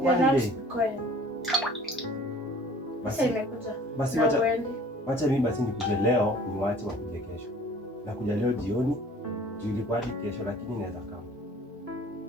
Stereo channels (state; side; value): normal; both; correlation 0.50